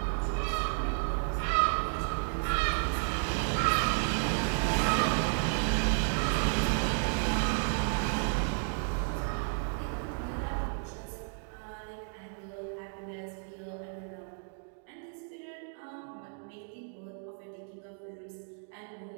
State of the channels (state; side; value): silent; left; 56 dB below the other